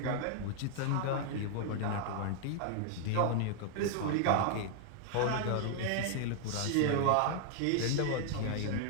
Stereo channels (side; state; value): both; different; correlation 0.00